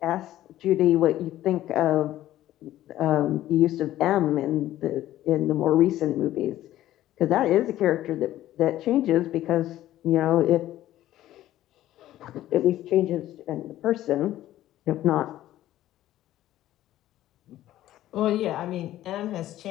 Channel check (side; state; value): right; quieter; 13.9 dB